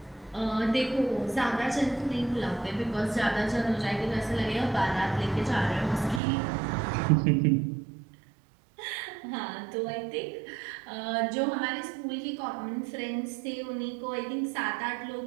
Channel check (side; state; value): left; drops out; at 6.2 s